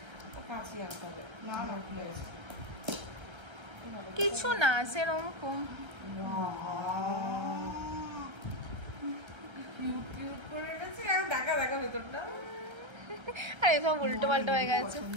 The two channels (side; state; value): left; late; 1.3 ms